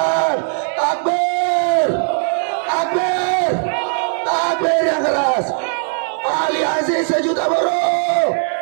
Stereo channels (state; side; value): silent; left; 66 dB below the other